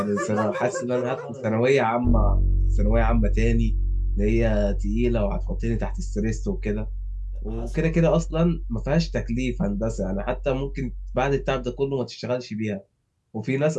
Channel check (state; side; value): identical; both; correlation 1.00